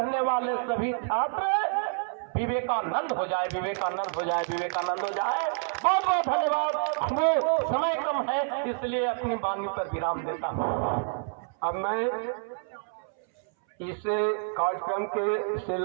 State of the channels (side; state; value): left; silent; 59 dB below the other